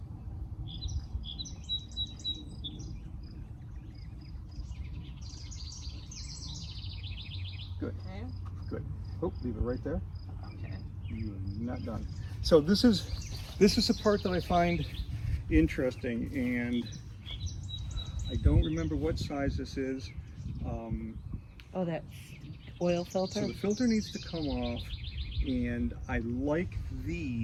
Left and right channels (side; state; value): both; identical; correlation 1.00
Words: Good. Okay. Good. Oh, leave it right there. Okay. You're not done. So this is the part that I find interesting, and I don't remember what size this is. Oh, that oil filter? So the filter needs to come off, and I like